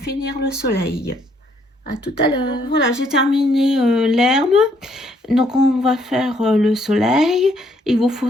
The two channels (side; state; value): both; normal; correlation 0.69